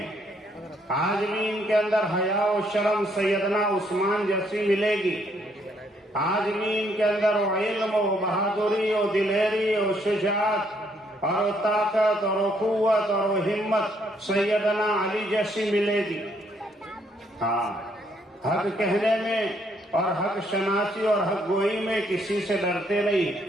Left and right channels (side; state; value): both; normal; correlation 0.70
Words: آج بھی ان کے اندر حیا و شرم سیدنا عثمان جیسی ملے گی، آج بھی ان کے اندر علم و بہادری و دلیری و شجاعت اور طاقت اور قوت اور ہمت سیدنا علی جیسی ملے گی۔ ہاں، حق کہنے میں اور حق شناسی اور حق گوئی میں کسی سے ڈرتے